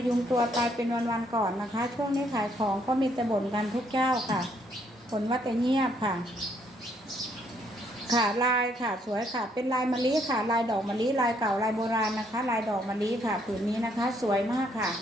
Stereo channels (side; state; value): both; normal; correlation 0.70